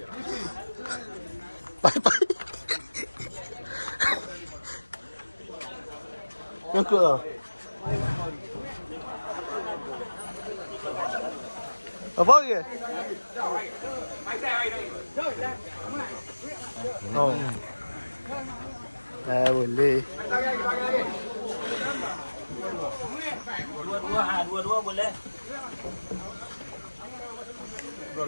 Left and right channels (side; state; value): both; inverted; correlation -1.00